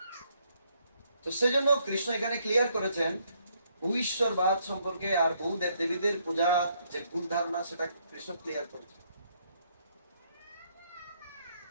তো সেজন্য কৃষ্ণ এখানে ক্লিয়ার করেছেন ভূশ্বরবাদ সম্পর্কে আর বহু দেব দেবীদের পূজা যে ভুল ধারণা সেটা কৃষ্ণ ক্লিয়ার করেছেন।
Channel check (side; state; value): both; inverted; correlation -0.71